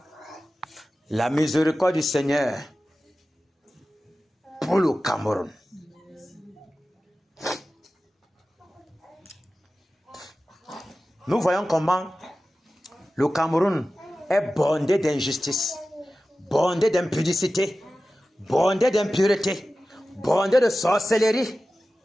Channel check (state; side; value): normal; both; correlation 0.95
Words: la miséricorde du Seigneur pour le Cameroun. Nous voyons comment le Cameroun est bondé d'injustice, bondé d'impudicité, bondé d'impureté, bondé de sorcellerie,